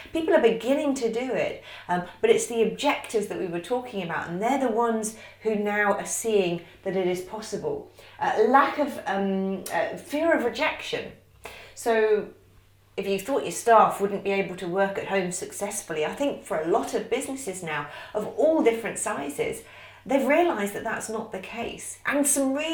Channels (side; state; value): both; identical; correlation 1.00